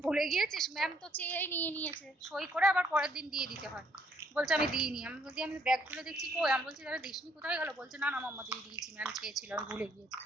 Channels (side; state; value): both; normal; correlation 0.68